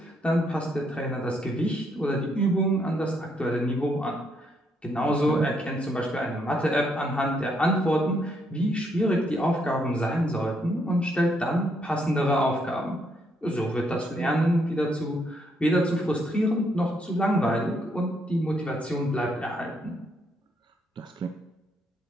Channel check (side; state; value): both; normal; correlation 0.74